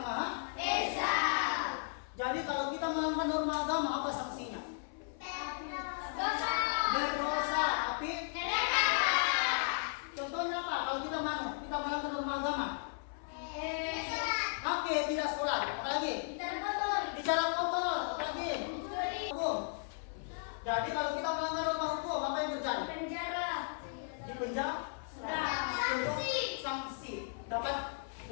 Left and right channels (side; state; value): right; silent; 54 dB below the other